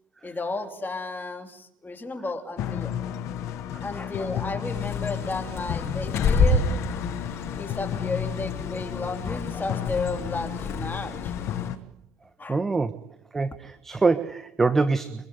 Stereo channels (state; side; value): normal; both; correlation 0.67